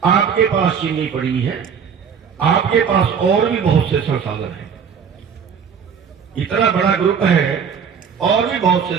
आपके पास चीनी पड़ी है, आपके पास और भी बहुत से संसाधन हैं, इतना बड़ा ग्रुप है और भी बहुत से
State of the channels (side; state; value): left; quieter; 7.0 dB